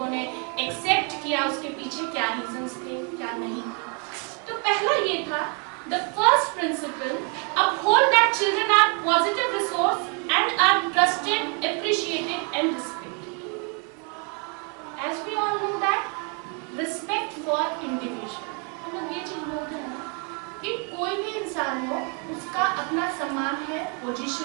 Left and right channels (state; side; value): quieter; left; 36.9 dB